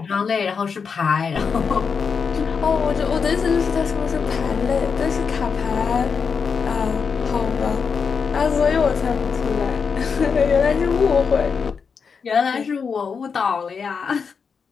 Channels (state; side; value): quieter; right; 5.8 dB